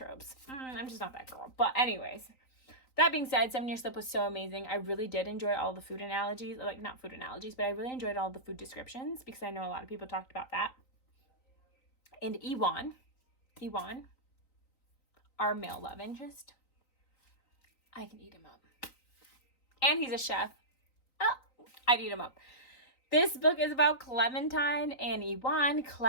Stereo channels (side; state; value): right; late; 3.9 ms